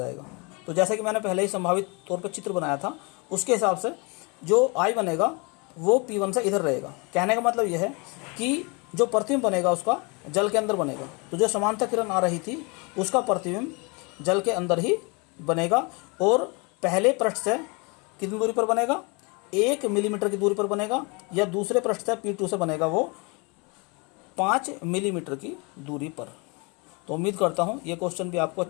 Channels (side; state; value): right; quieter; 30.2 dB